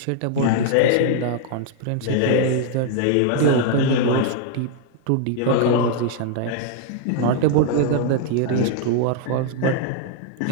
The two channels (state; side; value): different; both; correlation -0.01